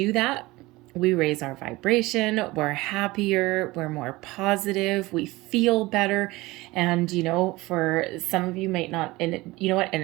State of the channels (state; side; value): quieter; left; 20.5 dB